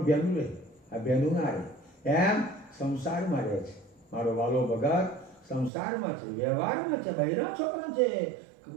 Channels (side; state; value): left; drops out; at 5.7 s